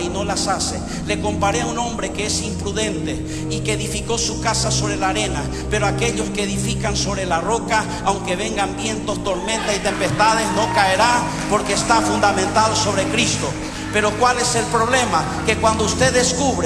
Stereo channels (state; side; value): identical; both; correlation 1.00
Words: y no las hace, le comparé a un hombre que es imprudente y que edificó su casa sobre la arena. Pero aquellos que edifican sobre la roca, aunque vengan vientos, tormentas y tempestades, no caerá, porque está fundamentado sobre Cristo. Pero ¿cuál es el problema? Que cuando usted